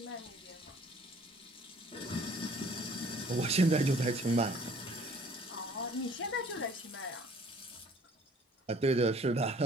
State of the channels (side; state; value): both; normal; correlation 0.55